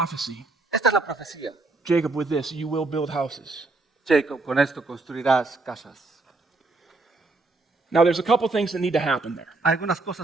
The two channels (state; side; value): quieter; left; 3.4 dB